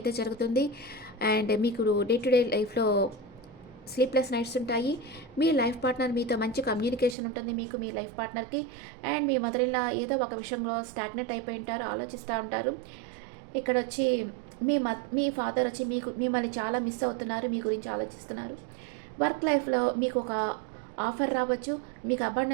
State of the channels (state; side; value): drops out; left; at 7.2 s